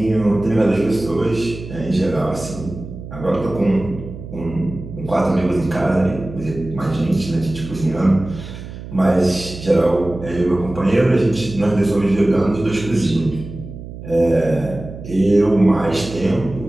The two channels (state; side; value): noise; right; hum, 12 dB below the sound